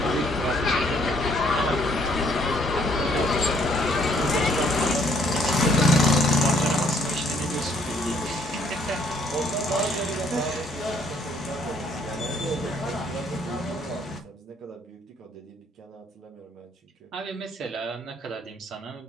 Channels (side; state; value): both; normal; correlation 0.65